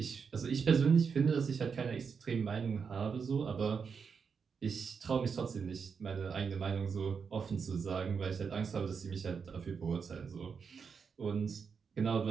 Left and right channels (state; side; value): quieter; left; 6.0 dB